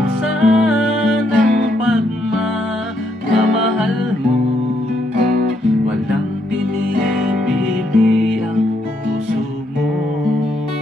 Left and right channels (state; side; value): normal; both; correlation 0.75